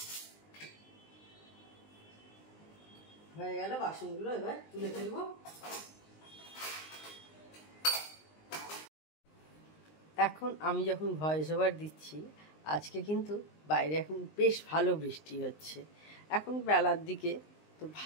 হয়ে গেল, বাসনগুলো এবার তুলে ফেলবো। এখন আমি যখন ভয়েস ওভার দিচ্ছি, আজকে কিন্তু বাইরে এখন বেশ ভালো বৃষ্টি হচ্ছে। এখন বেলার দিকে তো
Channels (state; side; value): late; right; 19 ms